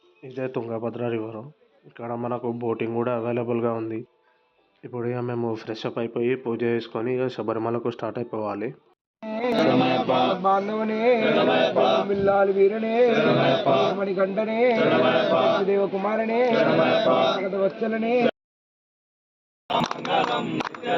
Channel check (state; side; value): identical; both; correlation 1.00